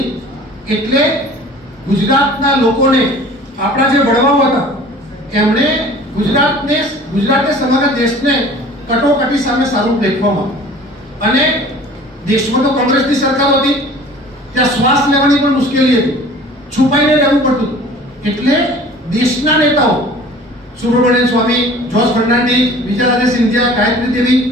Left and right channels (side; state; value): both; normal; correlation 0.46